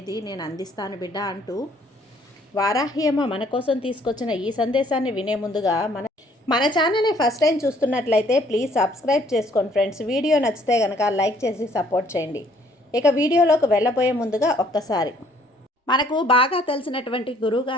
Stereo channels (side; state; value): both; normal; correlation 0.62